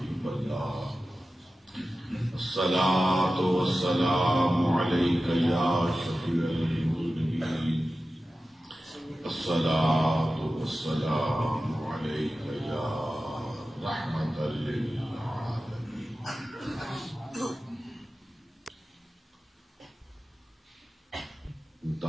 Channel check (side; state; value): both; normal; correlation 0.94